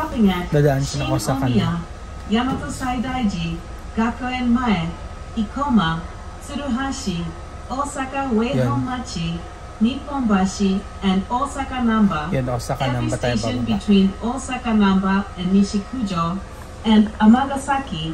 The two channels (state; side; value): identical; both; correlation 1.00